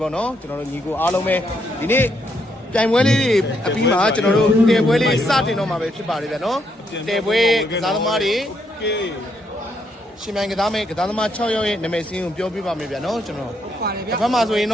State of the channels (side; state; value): both; normal; correlation 0.76